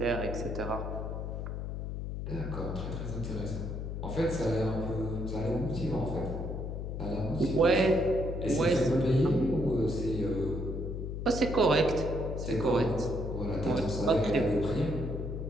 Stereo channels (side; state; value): left; noise; hum, 5 dB below the sound